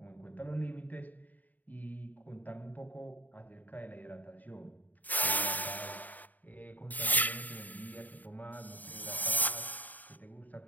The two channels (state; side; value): late; right; 0.081 ms